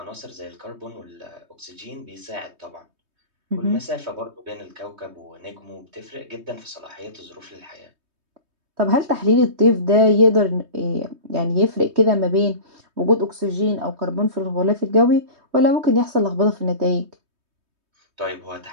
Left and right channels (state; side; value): late; left; 3.2 ms